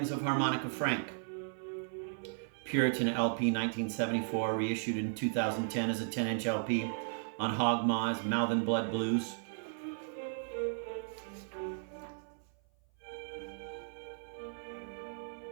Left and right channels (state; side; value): silent; left; 54 dB below the other